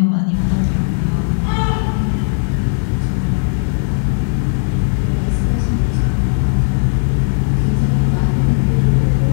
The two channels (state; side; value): silent; right; digital silence